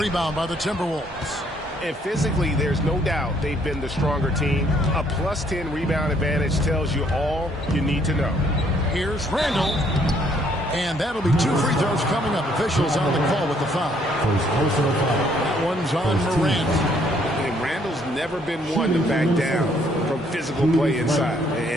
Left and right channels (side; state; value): both; normal; correlation 0.66